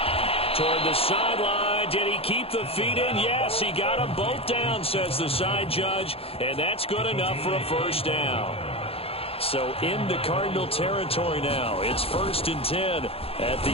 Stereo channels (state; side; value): late; right; 0.28 ms